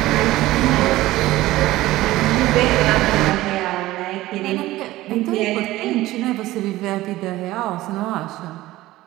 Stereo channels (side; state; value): left; quieter; 16.9 dB